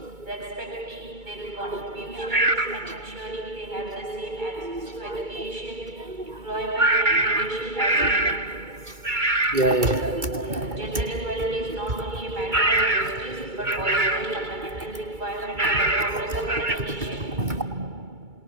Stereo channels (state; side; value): late; left; 2.3 ms